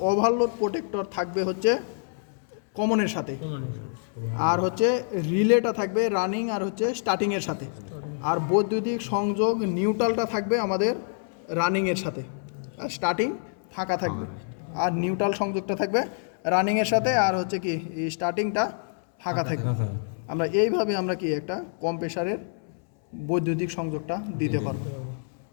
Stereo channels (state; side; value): silent; right; 60 dB below the other